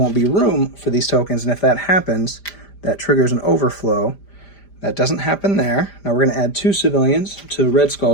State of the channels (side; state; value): right; late; 5.0 ms